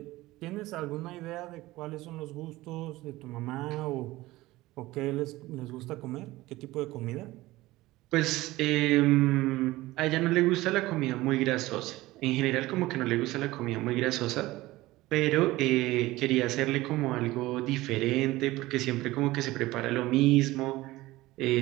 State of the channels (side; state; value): left; quieter; 18.4 dB